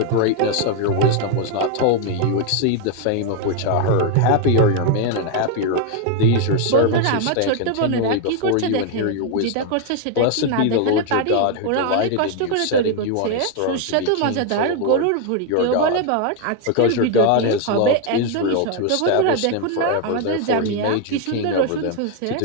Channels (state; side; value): different; both; correlation 0.01